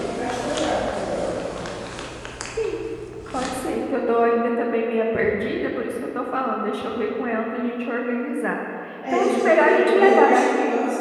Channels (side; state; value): both; identical; correlation 1.00